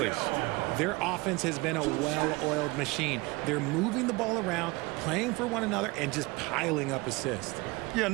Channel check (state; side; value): quieter; left; 23.7 dB